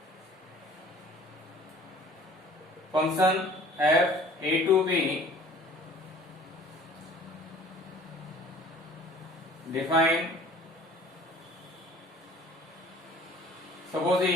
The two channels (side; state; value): both; normal; correlation 0.49